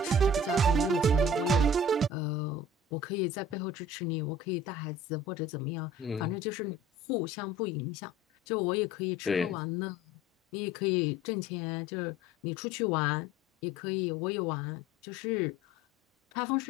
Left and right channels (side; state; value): both; normal; correlation 0.44